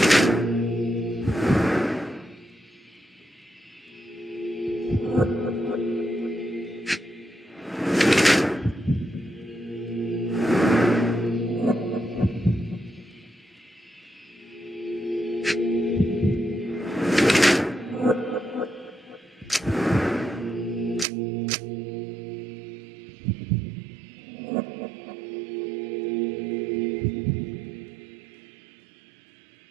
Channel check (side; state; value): left; drops out; at 21.1 s